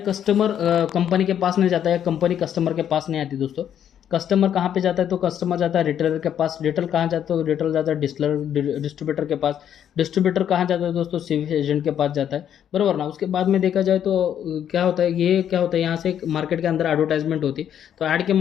कस्टमर कंपनी के पास नहीं जाता है, कंपनी कस्टमर के पास नहीं आती दोस्तों। कस्टमर कहाँ पे जाता है? तो कस्टमर जाता है रिटेलर के पास। रिटेल कहाँ जाता है? तो रिटेल जाता है डिस्ट्रीब्यूटर के पास। डिस्ट्रीब्यूटर कहाँ जाता है दोस्तों? सिविल एजेंट के पास जाता है, बराबर ना। उसके बाद में देखा जाए तो क्या होता है, ये क्या होता है, यहाँ से मार्केट के अंदर एडवर्टाइजमेंट होती है, तो ऐड के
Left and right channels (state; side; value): quieter; right; 9.6 dB